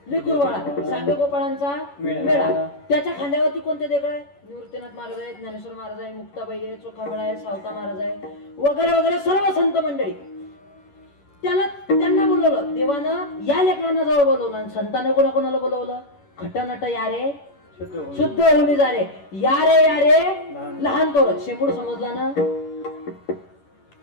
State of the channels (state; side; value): late; right; 11 ms